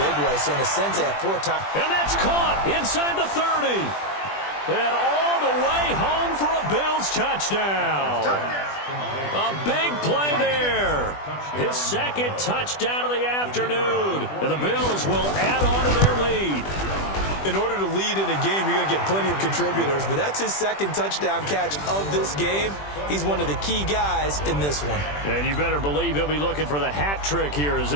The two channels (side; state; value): right; late; 20 ms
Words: way. So in a sense, they have 4 times. And that's caught inside the 30. And all the way home for a Bills touchdown. A big play there. His 2nd touchdown of the afternoon. And the Bills will add on to their lead. In order to lead in a game, you're going to get plenty of contributors, but that's his 2nd touchdown catch of this game. He's one of the key guys in this one. And you better believe he'll be looking for the hat trick here as